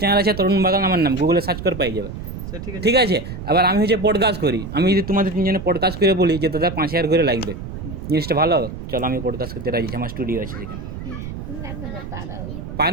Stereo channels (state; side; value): noise; right; rumble, 9 dB below the sound